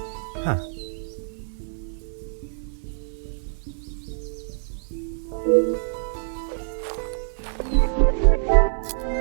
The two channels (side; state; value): left; silent; 59 dB below the other